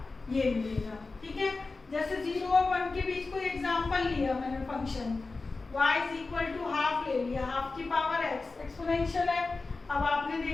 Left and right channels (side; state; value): right; quieter; 3.8 dB